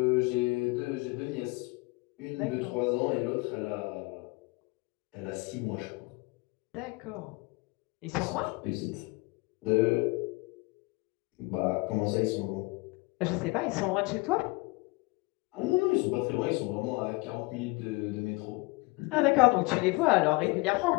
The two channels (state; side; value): quieter; right; 25.3 dB